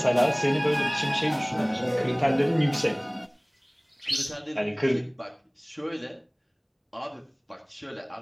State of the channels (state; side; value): identical; both; correlation 1.00